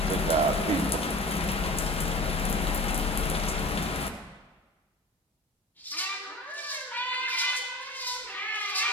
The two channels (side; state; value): both; normal; correlation 0.36